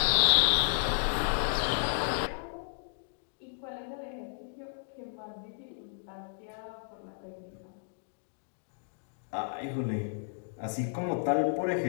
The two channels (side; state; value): right; silent; digital silence